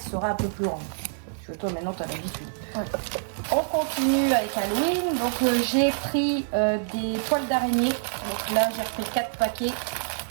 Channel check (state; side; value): silent; left; 57 dB below the other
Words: un peu plus grande. Parce que toi maintenant tu as l'habitude. Ouais. On continue avec Halloween. Donc j'ai pris des toiles d'araignée. Donc là j'ai repris 4 paquets. Donc